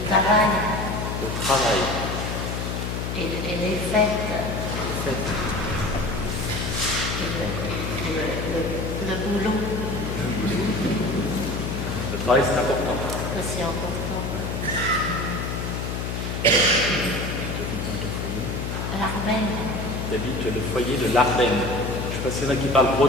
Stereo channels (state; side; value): noise; left; hum, 3 dB below the sound